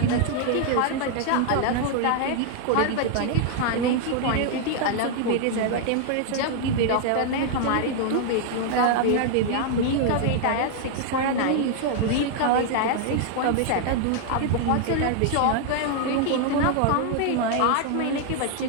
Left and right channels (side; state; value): both; different; correlation 0.00